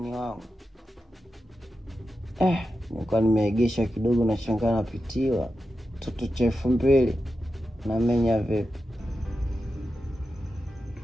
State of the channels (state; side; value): normal; both; correlation 0.90